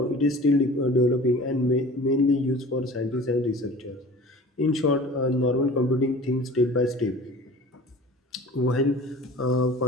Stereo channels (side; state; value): both; normal; correlation 0.42